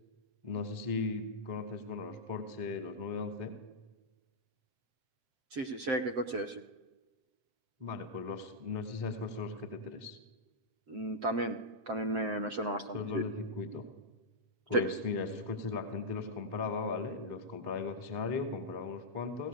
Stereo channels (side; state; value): left; late; 7.7 ms